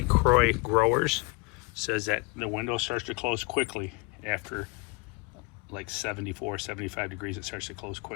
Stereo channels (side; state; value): right; quieter; 29.0 dB